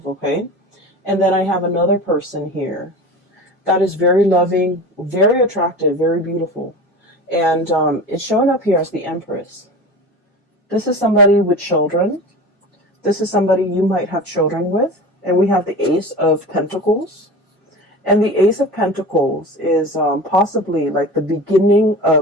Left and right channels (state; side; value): normal; both; correlation 0.32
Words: okay? And then I have another person here that is very loving, very attractive, very beautiful. And it's showing up here as the Empress. This is somebody with children. This is somebody you might have children with. And we have the Ace of Pentacles. And the Ace of Pentacles is possibly like the beginning